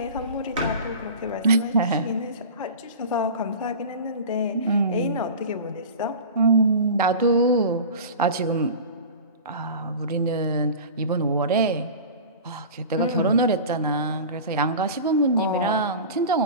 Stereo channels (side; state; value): both; inverted; correlation -0.34